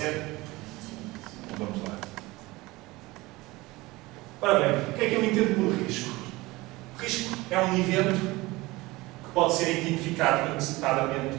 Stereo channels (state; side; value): quieter; left; 21.0 dB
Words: Então vamos lá. Ora bem, o que é que eu entendo por risco? O risco é um evento que pode ser identificado antecipadamente